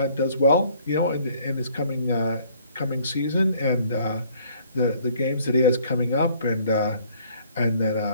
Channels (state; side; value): inverted; both; correlation -0.59